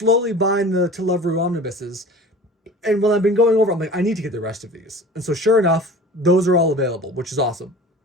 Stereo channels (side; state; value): both; normal; correlation 0.40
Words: buying the To Love Rue omnibuses. And when I've been going over, I'm like, I need to get the rest of these. And so sure enough, those are all available, which is awesome.